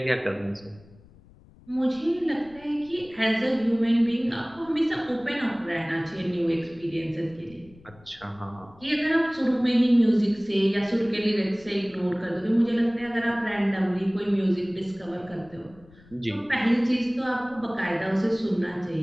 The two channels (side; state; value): left; noise; rumble, 25 dB below the sound